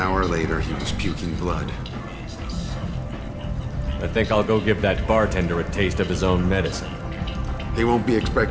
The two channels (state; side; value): identical; both; correlation 1.00